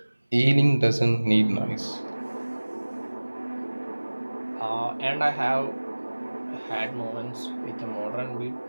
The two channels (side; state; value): both; inverted; correlation -1.00